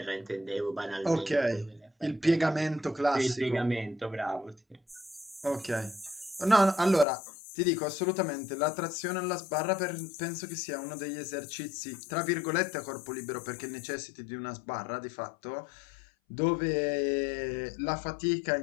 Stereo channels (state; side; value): drops out; right; at 7.1 s